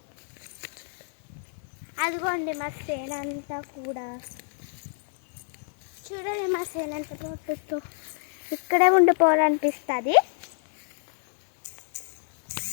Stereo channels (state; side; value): silent; right; digital silence